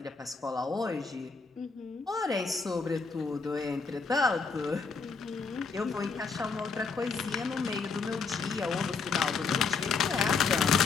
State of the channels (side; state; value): right; quieter; 4.8 dB